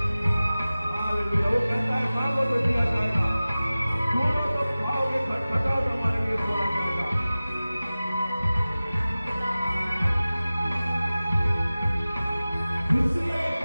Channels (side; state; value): both; inverted; correlation -0.97